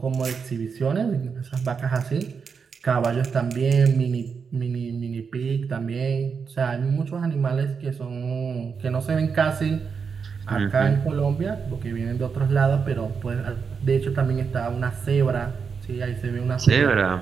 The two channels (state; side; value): quieter; left; 5.9 dB